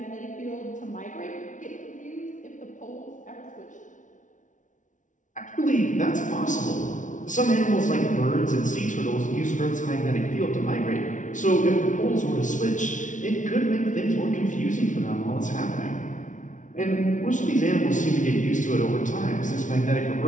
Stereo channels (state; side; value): late; right; 0.37 ms